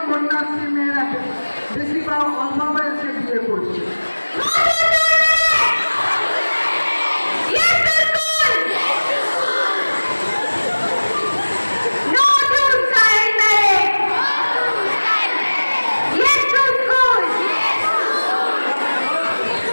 কন্যাশ্রী মেয়েরা বেশিরভাগ অল্প বয়সে বিয়ে করছে।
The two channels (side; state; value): both; inverted; correlation -1.00